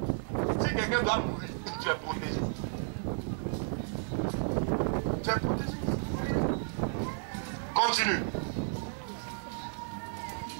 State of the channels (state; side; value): silent; left; 56 dB below the other